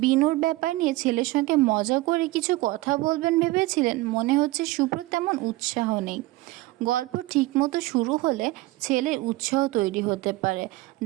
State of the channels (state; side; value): quieter; left; 19.6 dB